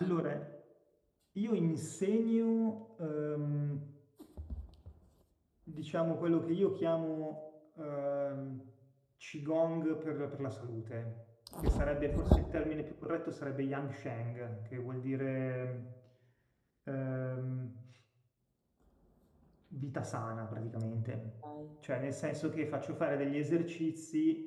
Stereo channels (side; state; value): both; identical; correlation 1.00